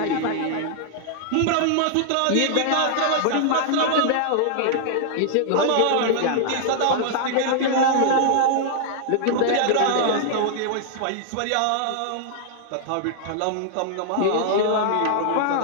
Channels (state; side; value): different; both; correlation -0.01